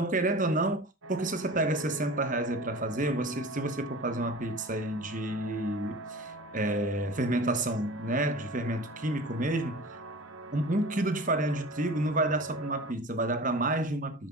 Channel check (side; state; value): both; normal; correlation 0.38